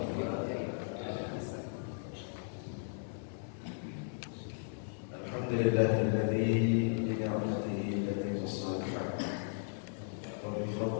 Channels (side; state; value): right; silent; digital silence